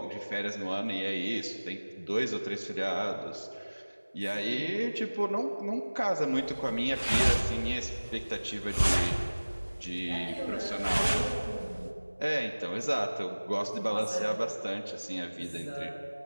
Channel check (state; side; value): inverted; both; correlation -1.00